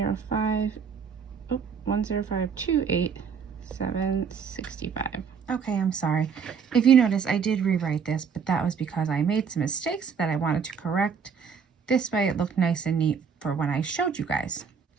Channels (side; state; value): left; quieter; 6.4 dB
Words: $105,287.65. Okay, I'm sorry. If you notice, I did rewrite this, but that was because I made some mistakes that I wanted to correct. This way it looked nice and neat for when I showed you guys.